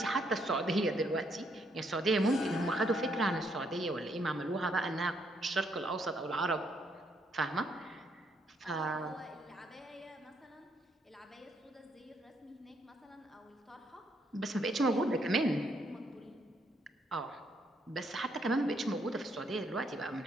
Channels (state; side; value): normal; both; correlation 0.73